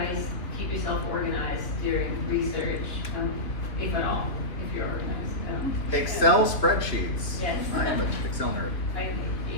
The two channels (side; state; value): right; late; 3.1 ms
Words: keep yourself organized during research, if at all, if you're organized? Excel spreadsheets. Yes. I am an Excel nerd.